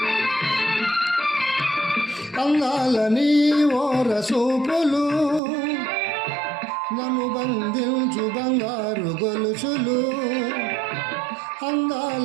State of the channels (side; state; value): left; drops out; at 5.4 s